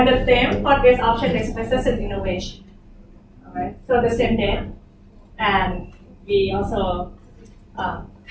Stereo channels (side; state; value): both; identical; correlation 1.00